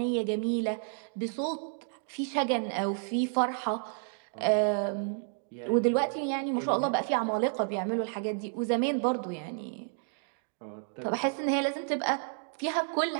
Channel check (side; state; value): left; silent; 57 dB below the other